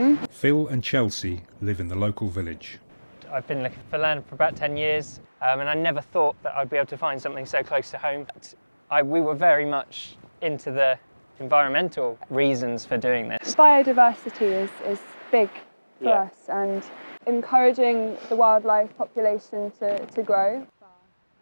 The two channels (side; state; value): both; inverted; correlation -1.00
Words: Phil and Chelsea live in the local village. I've been looking for land for about 10 years, and I never thought that I'd be able to find something so close to home. We were very much into the environmental reasons for doing this. Biodiversity is big for us, and encouraging the wildlife population to grow.